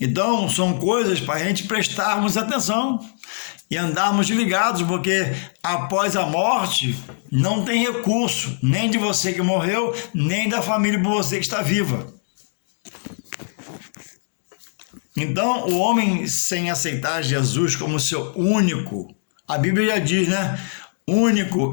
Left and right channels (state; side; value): silent; right; digital silence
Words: são coisas para a gente prestarmos atenção e andarmos ligados, porque após a morte não tem recurso, nem de você que morreu, nem da família por você que está viva. Então, o homem sem aceitar Jesus como seu único, a Bíblia já diz, né?